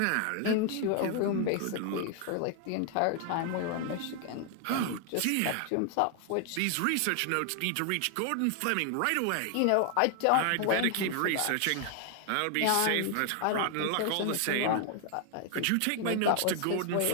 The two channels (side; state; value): both; different; correlation 0.00